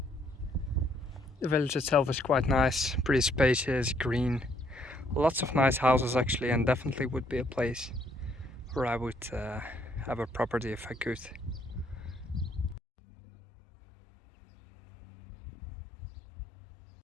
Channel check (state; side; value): drops out; right; at 12.8 s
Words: The village itself is quite nice, pretty spacious, green, lots of nice houses actually, and definitely would be a place where I would have a property if I could.